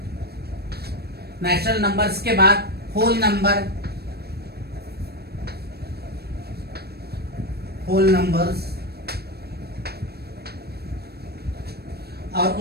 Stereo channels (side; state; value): left; late; 0.47 ms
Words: natural numbers के बाद होल नंबर, होल नंबर्स, और